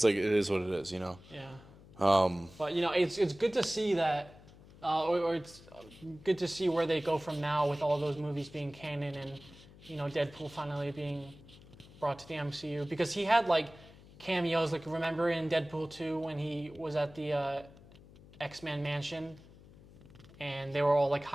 like it is what it is, you know. Yeah. But you know, it's good to see that, or it's good to see where they go from now with all those movies being canon and, you know, Deadpool finally being brought to the MCU because he had like cameos. Like remember in Deadpool 2 when he was at the X-Men mansion, and they were all like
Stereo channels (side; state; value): left; noise; hum, 21 dB below the sound